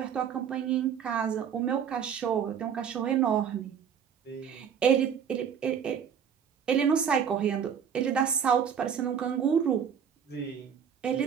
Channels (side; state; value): left; quieter; 7.7 dB